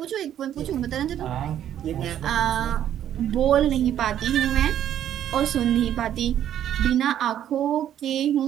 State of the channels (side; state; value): left; quieter; 10.7 dB